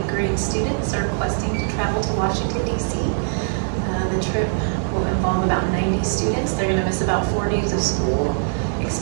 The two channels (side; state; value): left; silent; 64 dB below the other